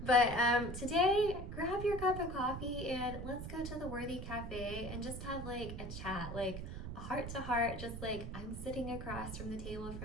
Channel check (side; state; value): right; noise; rumble, 7 dB below the sound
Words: But today, grab your cup of coffee and let's go to the Worthy Café and just have like a chat, like a heart to heart, just like I'm sitting across from the table